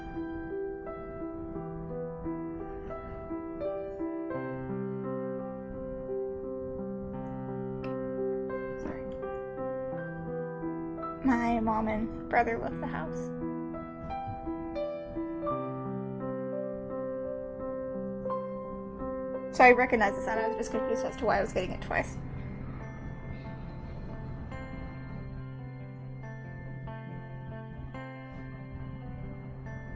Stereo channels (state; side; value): identical; both; correlation 1.00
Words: Sorry. My mom and brother left the house. So I recognize the sound. I was just confused as to why I was getting it twice.